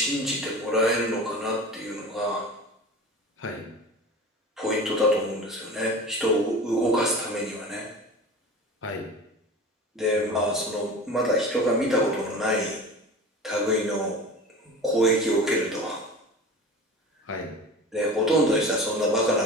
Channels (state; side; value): normal; both; correlation 0.35